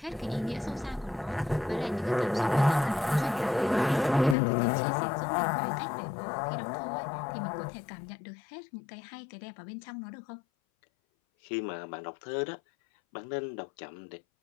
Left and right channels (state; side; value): drops out; right; at 4.4 s